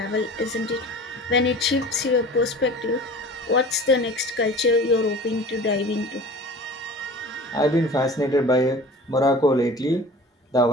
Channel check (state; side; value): normal; both; correlation 0.40